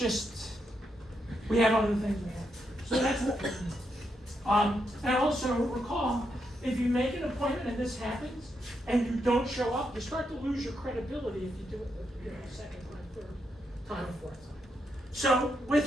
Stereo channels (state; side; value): normal; both; correlation 0.81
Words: we have other things we have. So that's what we do. And also recall, if you make an appointment and this happens, and you don't show up, you start to lose your credibility if you do it the second time, third time, or fourth time. So